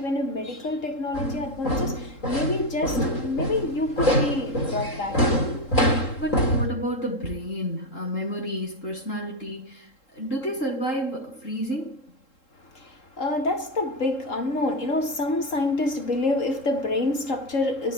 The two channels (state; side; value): late; right; 3.7 ms